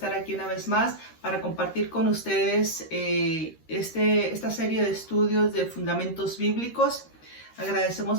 aquí una vez más para compartir con ustedes esta serie de estudios de fundamentos bíblicos.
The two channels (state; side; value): late; right; 13 ms